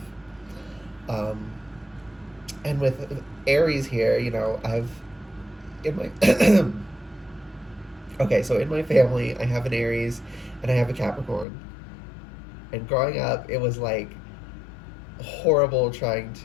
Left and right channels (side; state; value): right; drops out; at 11.5 s